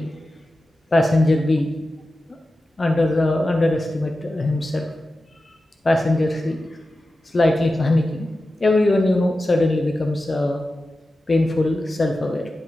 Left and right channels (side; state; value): both; normal; correlation 0.93